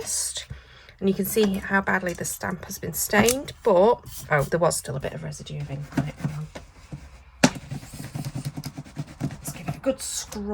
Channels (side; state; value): both; identical; correlation 1.00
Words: And you can see how badly the stamp has been stained. But, oh, there was still a bit of residue of ink on it. Hang on. Let's give it a good